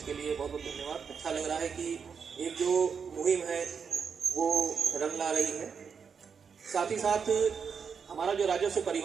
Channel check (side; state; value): left; quieter; 6.3 dB